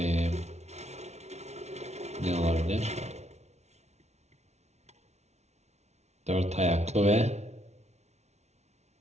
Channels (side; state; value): left; late; 0.32 ms